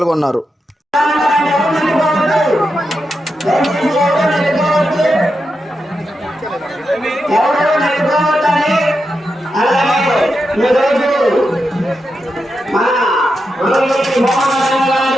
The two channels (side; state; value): both; normal; correlation 0.87